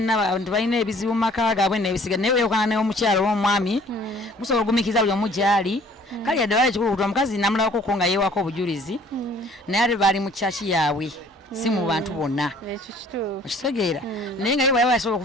abantu balina ebizibu mu maka gaabwe n'ebisiga naye weeyokana n'omukyala w'omwami musobola okugumikiza buli omu gy'ali kale yadde wala ekikulukutu omukazi namulabako nga yeewako obujulizi naye ate baali mu kyaki yaabwe si mu bantu bonna okitegeera naye nga ye bwayaba yasobola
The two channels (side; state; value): both; normal; correlation 0.55